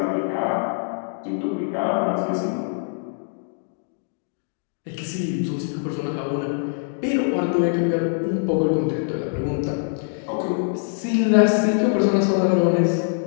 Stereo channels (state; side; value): silent; right; digital silence